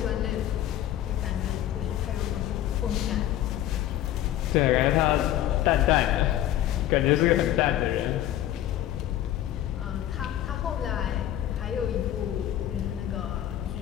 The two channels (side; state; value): right; quieter; 12.6 dB